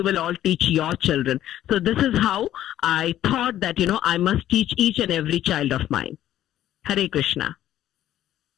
will all teach your children. So this is how I thought that, I must teach each and every child of mine. Hare Krishna.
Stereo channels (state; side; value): quieter; right; 12.5 dB